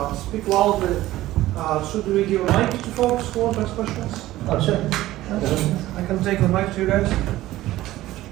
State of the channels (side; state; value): left; quieter; 15.9 dB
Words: speak loudly. Should we give a mic to folks who want to ask questions? Oh sure. I can take the mic to you guys.